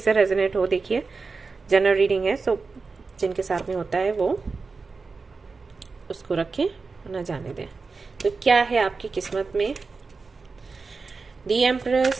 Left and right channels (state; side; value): quieter; left; 4.4 dB